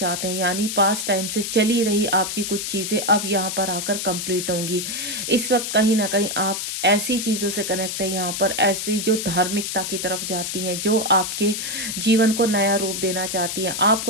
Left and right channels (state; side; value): noise; left; hiss, 4 dB below the sound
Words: हैं, यानी पास्ट टाइम से चली रही ही आपकी कुछ चीज़ें अब यहाँ पर आकर कंप्लीट होंगी। इस वक्त कहीं न कहीं आप ऐसी चीज़ों से कनेक्ट है यहाँ पर, ऐसी जो धार्मिकता की तरफ जाती हैं, जो आपके जीवन को नया रूप देना चाहती हैं।